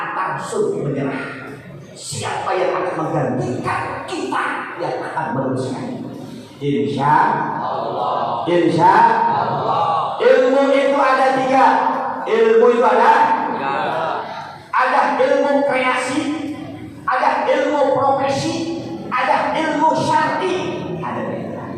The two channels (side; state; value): both; identical; correlation 1.00